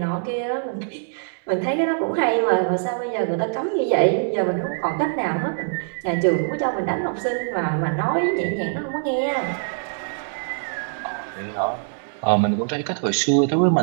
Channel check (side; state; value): left; silent; digital silence